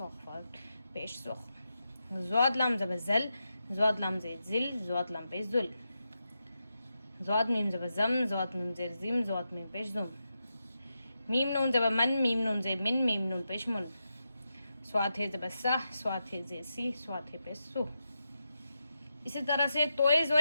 ख्वाफ पेश सुख, ज़्वाद लाम ज़बर ज़ल, ज़्वाद लाम जे ज़िल, ज़्वाद लाम पे ज़ुल, ज़्वाद मीम ज़बर ज़म, ज़्वाद मीम ज़ेर ज़िम, ज़्वाद मीम पेश ज़ुम, मीम नून ज़बर मन, मीम नून जे मिन, मीम नून पेश मुन, स्वाद है ज़बर सह, स्वाद है जे सी, स्वाद है पे सु। इसी तरह से तोए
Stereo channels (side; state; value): both; inverted; correlation -0.88